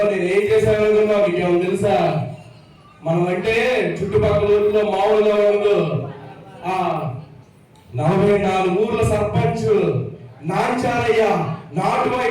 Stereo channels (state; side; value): identical; both; correlation 1.00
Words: నేను ఏం చేశాను అనుకున్నావు? నీకేమో తెలుసా? మనం అంటే చుట్టుపక్కల ఊర్లో మామూలుగా ఉండదు. 44 ఊర్ల సర్పంచ్ నాంచారయ్య నాటు